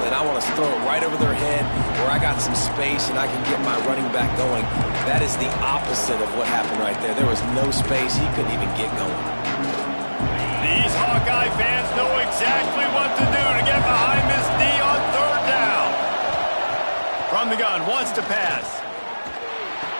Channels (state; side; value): inverted; both; correlation -1.00